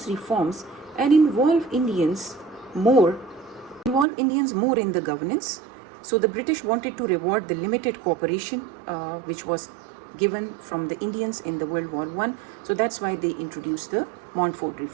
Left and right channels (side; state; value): left; drops out; at 4.0 s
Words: reforms and involve Indians more in the governance. So the British wanted to reward the limited cooperation which was given from the Indians in the World War I. So that's why they introduced the Montfort